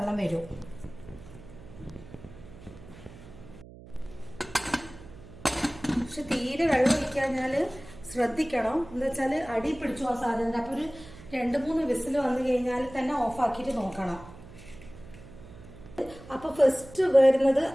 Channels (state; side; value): noise; right; hum, 18 dB below the sound